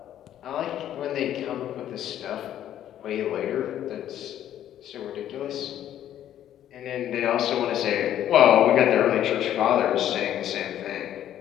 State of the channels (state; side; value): quieter; right; 11.3 dB